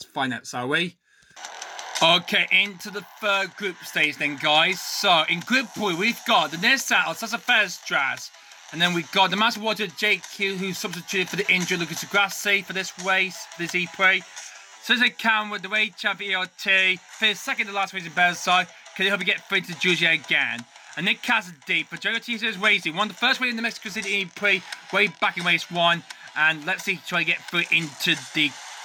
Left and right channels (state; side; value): identical; both; correlation 1.00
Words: find out, shall we? Okay, into the third group stage then, guys. So in group 3, we've got the Nissan Alsassa Ferstras. And then we've got the Maserati JQ, who's substituted for the injured Lucas Grassi for this race, this E-PRIX. So there's a Cam with the race champion ERT. Finished second to last race in Bearside. Can he help you get through to Julia again? And Nick Cassidy for Jogo Teasers Racing. Won the first race in the Mexico City E-PRIX way back in race 1. And let's see, try to get through into the